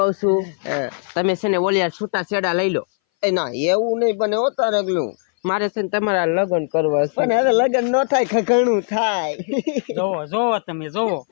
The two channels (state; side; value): silent; right; 61 dB below the other